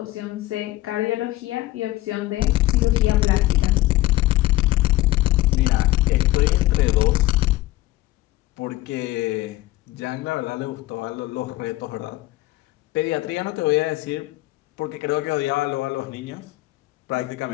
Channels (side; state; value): right; quieter; 16.9 dB